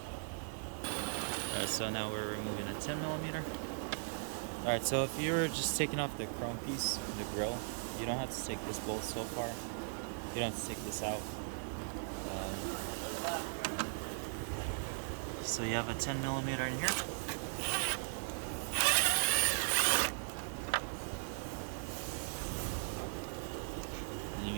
Alright, so now we're removing a 10mm. Alright, so if you're just taking off the chrome piece, the grill, you don't have to take this bolt so far. You don't have to take this out. So you have a 10mm in here. Then you're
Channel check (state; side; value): silent; left; digital silence